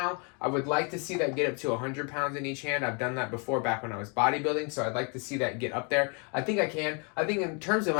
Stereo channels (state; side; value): quieter; right; 35.4 dB